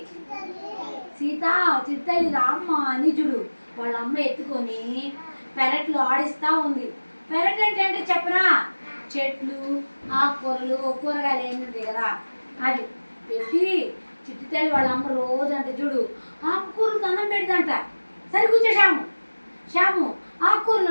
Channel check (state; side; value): inverted; both; correlation -1.00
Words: సీత చిట్టల్లి రామ్మ అని చూడు. వాళ్ళ అమ్మ ఎత్తుకొని పెరట్లో ఆడిస్తూ ఉంది. పెరట్ అంటే చెప్పరా? చెట్లు, ఆకుకూరలు, కూరగాయలు ఏమి ఉంటాయి కదా, అది పెట్టి చిట్టి తల్లి వాళ్ళ అమ్మ రోజు అంటే చూడు ఆకుకూరలు అన్నం పెడదంట. సరే కూర్చో శ్యాము, ఆకుకూరలు